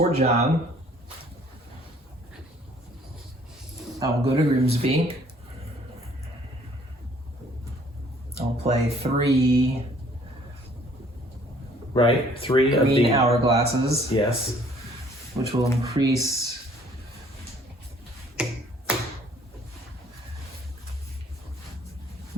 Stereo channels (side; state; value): both; normal; correlation 0.59